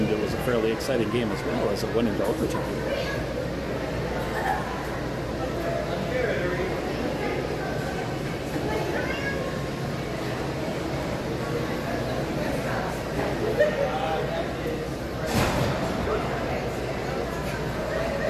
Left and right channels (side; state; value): both; identical; correlation 1.00